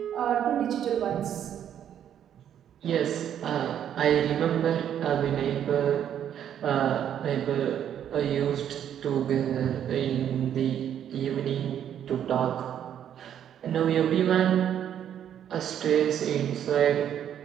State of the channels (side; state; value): left; quieter; 9.7 dB